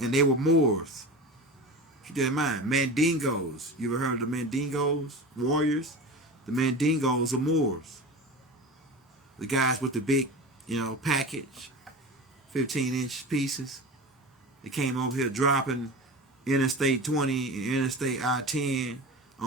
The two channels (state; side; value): normal; both; correlation 0.30